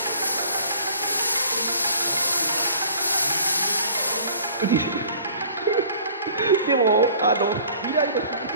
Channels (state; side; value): inverted; both; correlation -0.49